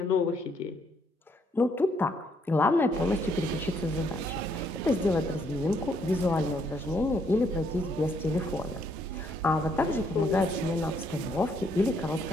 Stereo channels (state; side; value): normal; both; correlation 0.71